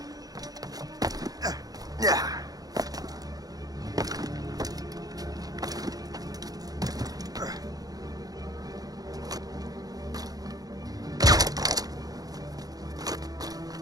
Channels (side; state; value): left; late; 0.18 ms